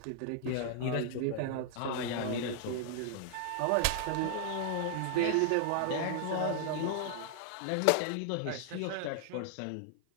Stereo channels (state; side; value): different; both; correlation -0.01